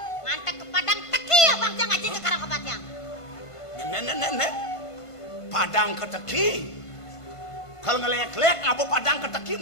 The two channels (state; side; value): late; right; 1.5 ms